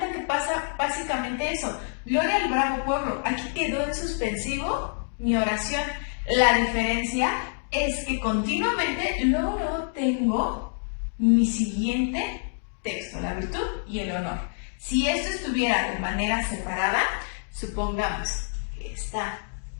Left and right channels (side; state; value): right; silent; digital silence